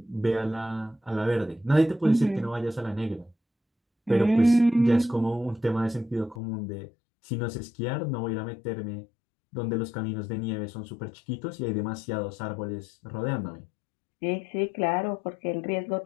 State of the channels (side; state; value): right; drops out; at 6.4 s